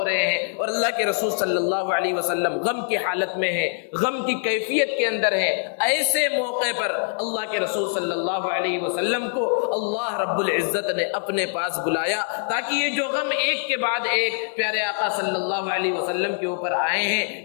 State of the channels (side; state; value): right; silent; 58 dB below the other